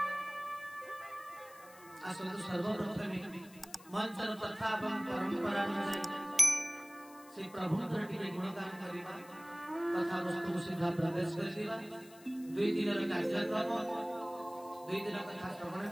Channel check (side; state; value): left; noise; hiss, 22 dB below the sound